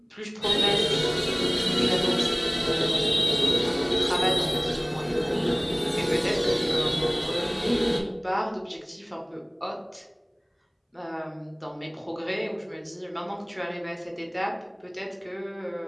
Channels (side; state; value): both; identical; correlation 1.00